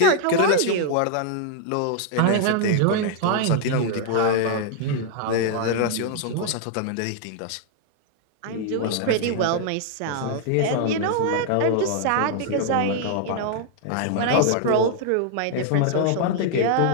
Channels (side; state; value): both; different; correlation 0.00